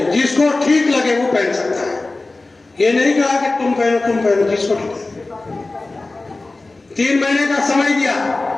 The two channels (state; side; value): quieter; right; 3.2 dB